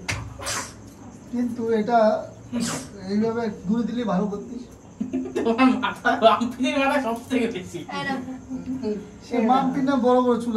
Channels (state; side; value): identical; both; correlation 1.00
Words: কিন্তু এটা এইভাবে দূরে দিলে ভালো করতিস। তোমার মাথা, রামপিনের মাথা সব থেকে বেশি। এরম। সে মাম্পি না বড় বড় চুল